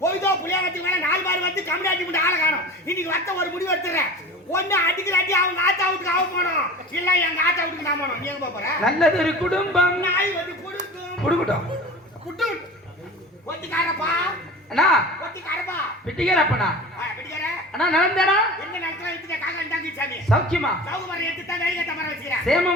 போய்தோ புளியாங்கத்துக்கு மேல 4 பார் வந்து கம்யூனிட்டி மட்டும் ஆளை காணும். இன்னைக்கு வத்த ஒரு முடிவு எடுத்துறேன். ஒண்ணு அடிக்கிறாட்டி அவங்க ஆத்தா வீட்டுக்கு அவ போனோம், இல்ல எங்க ஆத்தா வீட்டுக்கு நான் போனோம். நீ எங்க போற? நல்லது ஒரு குடும்பம் நாய் வந்து குடுக்கும் குடுக்கட்டும் குட்டு ஒத்திக்காரப்பா அண்ணா ஒத்திக்காரப்பா பிட்டிக்காரப்பண்ணா பிடிக்கார அண்ணா நடந்தானா எங்க நடத்துல எடுத்துட்ட காக்கா இருந்தாங்க சாமி சௌக்கியமா சௌகமரம் எடுத்து தான் வேலையை தமர வச்சுக்கிறேன்.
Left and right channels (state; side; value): normal; both; correlation 0.37